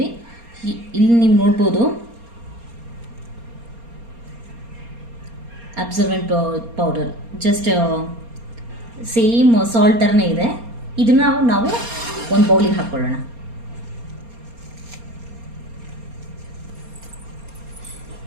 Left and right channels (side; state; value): left; late; 4.3 ms